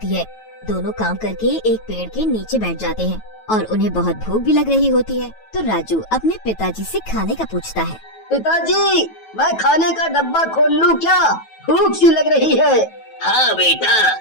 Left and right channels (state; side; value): late; right; 9.2 ms